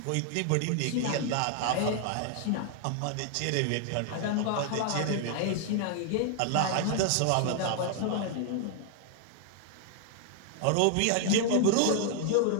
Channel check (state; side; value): different; both; correlation 0.00